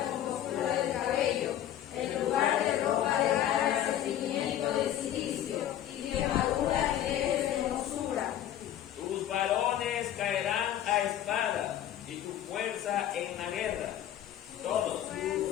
compostura del cabello, en lugar de ropa de gala, sentimiento de silicio, y quemadura en ejes de hermosura. tus varones caerán a espada y tu fuerza en la guerra, todos.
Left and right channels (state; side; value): quieter; right; 11.5 dB